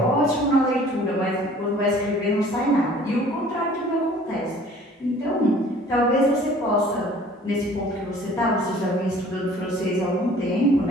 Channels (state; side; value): normal; both; correlation 0.51